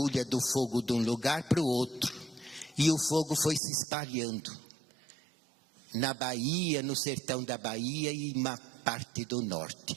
do fogo de um lugar para o outro. E o fogo foi se espalhando na Bahia, no sertão da Bahia e uma parte do norte.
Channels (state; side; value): drops out; left; at 3.6 s